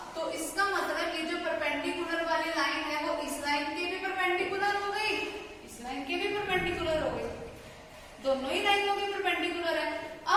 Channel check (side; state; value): both; identical; correlation 1.00